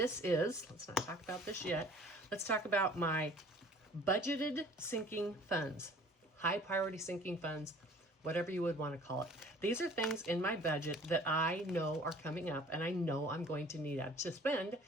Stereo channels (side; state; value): both; normal; correlation 0.50